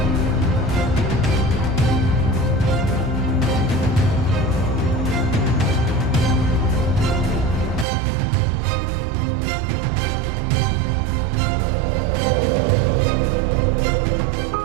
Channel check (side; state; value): left; drops out; at 7.9 s